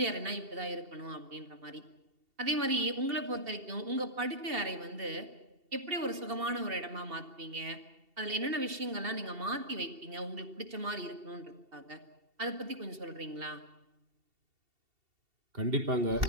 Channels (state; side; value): late; left; 2.7 ms